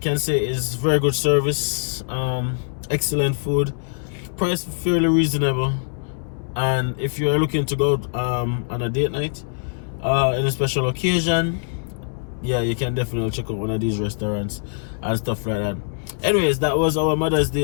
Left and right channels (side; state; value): right; silent; digital silence